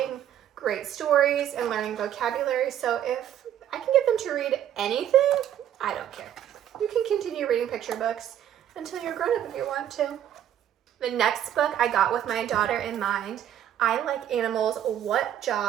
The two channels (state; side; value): quieter; left; 10.7 dB